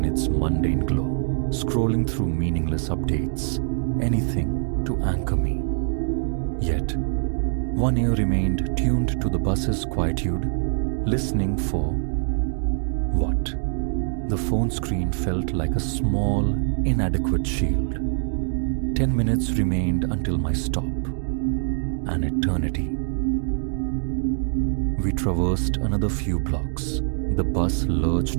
its mundane glow, scrolling through meaningless updates, anything to anchor me. Yet, one ear remained tuned to the bus's quietude, listening for what? The phone screen felt like a small, inadequate shield. 10 minutes remained until my stop. An eternity. We traversed another few blocks. The bus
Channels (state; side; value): silent; left; digital silence